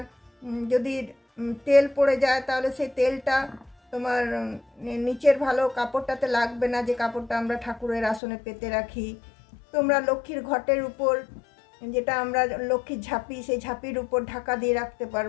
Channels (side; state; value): right; drops out; at 8.2 s